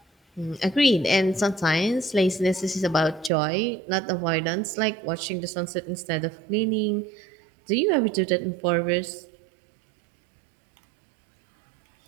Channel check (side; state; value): left; drops out; at 3.3 s